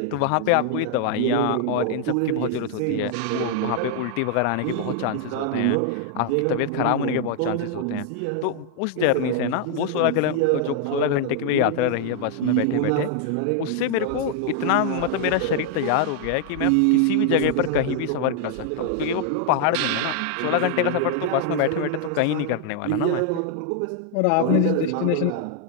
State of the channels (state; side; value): different; both; correlation 0.00